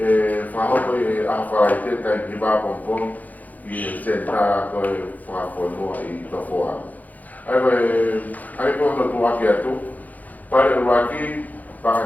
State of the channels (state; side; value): late; right; 0.080 ms